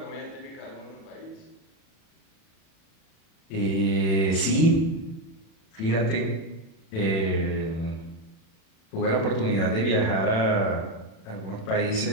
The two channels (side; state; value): right; late; 37 ms